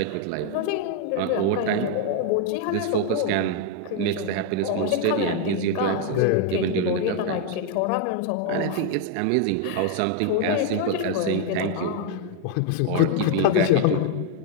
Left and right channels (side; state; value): both; different; correlation 0.00